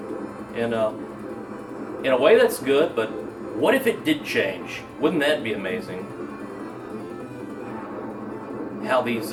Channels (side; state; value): both; identical; correlation 1.00